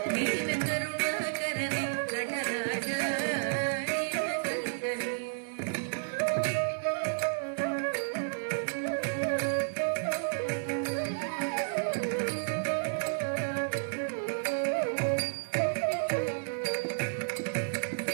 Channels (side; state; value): left; silent; 57 dB below the other